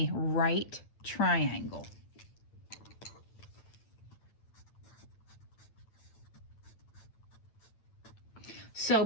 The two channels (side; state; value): right; late; 9.0 ms